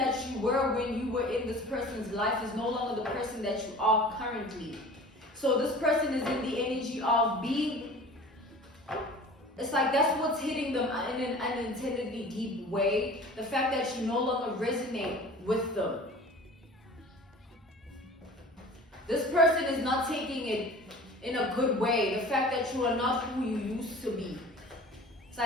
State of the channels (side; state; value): both; normal; correlation 0.42